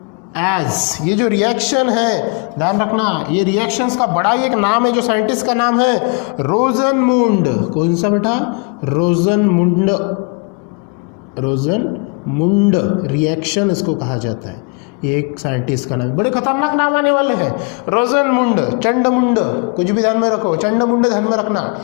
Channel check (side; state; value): right; quieter; 33.7 dB